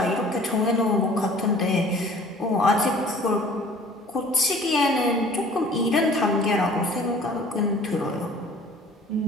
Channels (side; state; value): both; normal; correlation 0.50